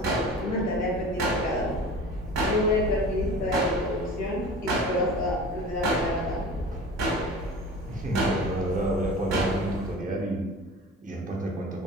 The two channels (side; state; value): both; normal; correlation 0.38